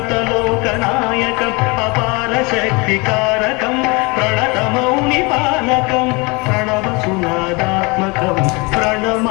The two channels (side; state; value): right; quieter; 27.4 dB